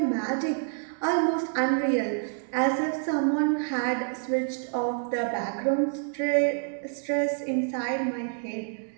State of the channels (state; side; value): silent; left; 58 dB below the other